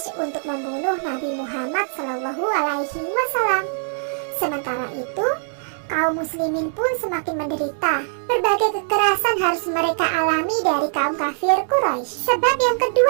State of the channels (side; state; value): left; silent; digital silence